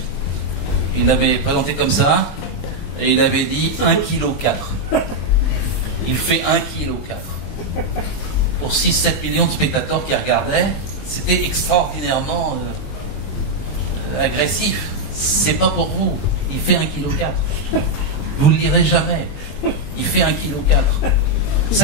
Il l'avait présenté comme ça, et il avait dit 1,4 kg. Il fait 1,4 kg. Pour 6-7 millions de spectateurs qui regardaient, c'était extraordinairement agressif. C'est pas pour vous. Il fait 1,4 kg. Vous ne le lirez jamais. Il fait 1,4 kg.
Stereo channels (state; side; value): late; right; 21 ms